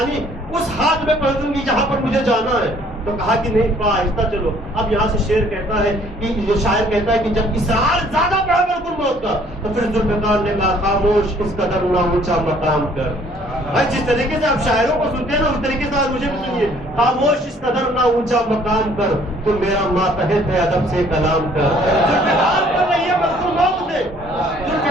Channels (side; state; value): both; normal; correlation 0.59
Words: اس ہاتھ میں پہنچوں گی جہاں پر مجھے جانا ہے. تو کہا کہ نہیں آہستہ چلو. اب یہاں سے شعر کہتا ہے کہ یہ شاعر کہتا ہے کہ جب اصرار زیادہ بڑھا ملک الموت کا تو پھر ذوالفقار نے کہا خاموش اس قدر نہ اونچا مقام کر. بھائی جس طریقے سے آپ شاعروں کو سنتے ہیں نا اس طریقے سے آج مجھے بھی سنیے. خاموش اس قدر نہ اونچا مقام کر, تو میرا ماتحت ہے ادب سے کلام کر. ذوالفقار کو نہیں ہے ملک الموت سے,